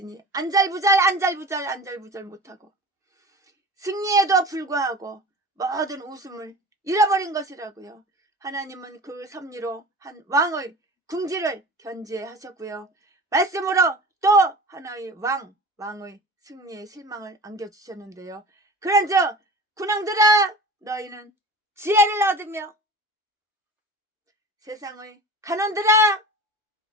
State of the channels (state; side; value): normal; both; correlation 0.36